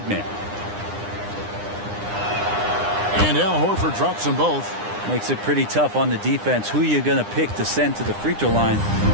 man. And Al Horford drops them both. Makes it pretty tough on the defense. Who you going to pick to send to the free throw line?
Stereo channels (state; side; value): late; left; 9.8 ms